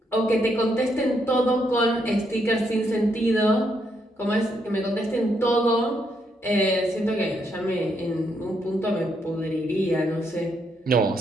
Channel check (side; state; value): both; normal; correlation 0.76